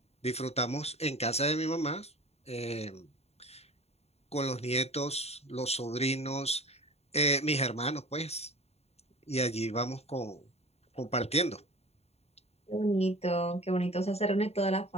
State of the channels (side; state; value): right; late; 0.30 ms